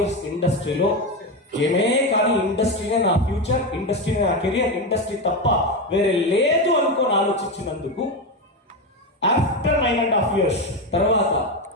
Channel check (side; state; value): both; normal; correlation 0.14